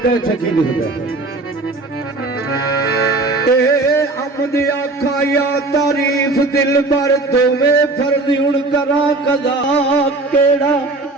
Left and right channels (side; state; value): left; quieter; 3.2 dB